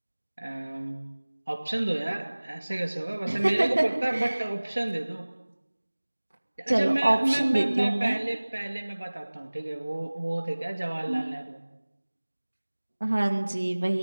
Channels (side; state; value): both; inverted; correlation -1.00